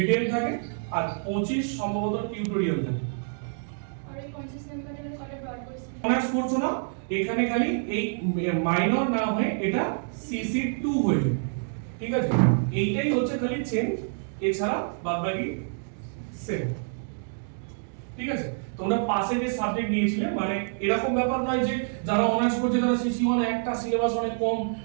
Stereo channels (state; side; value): silent; left; digital silence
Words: থাকে আর 25 সম্ভবত টিউটোরিয়াল থাকে। আর এই 50 নাম্বারের কটা ডট কোয়েশ্চেন অনার্স করছো না, এখানে খালি এই মাইনর না হয়ে এটা সিসি 2 হয়ে যাবে, ঠিক আছে? এইটাই হচ্ছে খালি চেঞ্জ, এছাড়া বাদবাকি সেম, ঠিক আছে? তোমরা পাশে যে সাবজেক্ট নিয়েছিলে, মানে এরকম ব্যাপার নয় যে যারা অনার্স করছে তারা সিসি 1 একটা সিলেবাস অনেক কম,